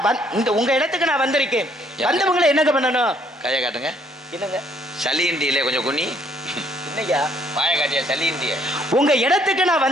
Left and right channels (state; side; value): normal; both; correlation 0.66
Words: இந்த உங்க இடத்துக்கு நான் வந்திருக்கேன். வந்தவங்களை என்னங்க பண்ணணும்? கையை காட்டுங்க. என்னங்க சளியிண்டியிலே கொஞ்சம் குனி. என்னையா வாய காட்டியா? சளியிண்டிய உங்க இடத்துக்கு நான்